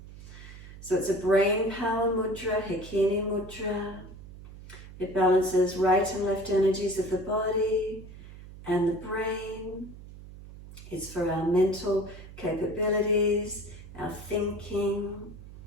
So it's a brain power mudra, Hakini Mudra. It balances right and left energies of the body and the brain. It's for our mental capabilities, our thinking,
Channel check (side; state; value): right; noise; hum, 16 dB below the sound